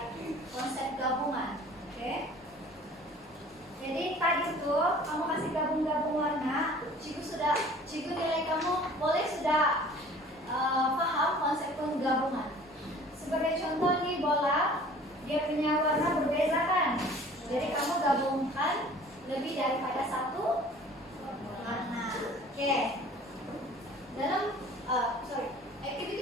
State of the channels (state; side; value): normal; both; correlation 0.48